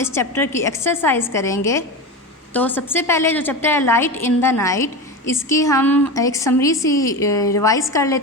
चैप्टर की एक्सरसाइज करेंगे। तो सबसे पहले जो चैप्टर है लाइट इन द नाइट, इसकी हम एक समरी सी रिवाइज़ कर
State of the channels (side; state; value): both; normal; correlation 0.23